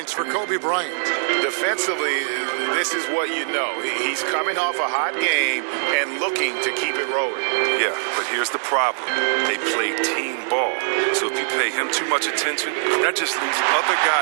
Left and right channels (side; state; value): left; silent; digital silence